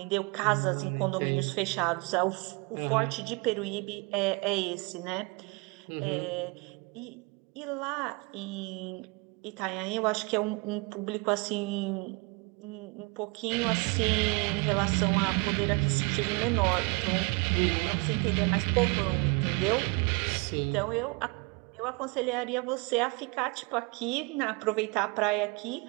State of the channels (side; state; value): left; quieter; 28.4 dB